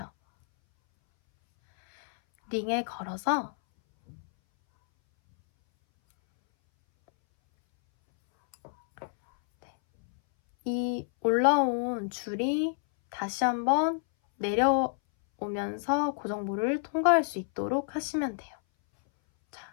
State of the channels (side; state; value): right; silent; 59 dB below the other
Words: 링에 걸어서 이 올라온 줄이 다시 한번 내려오면서 고정볼을 통과할 수 있도록 하시면 돼요.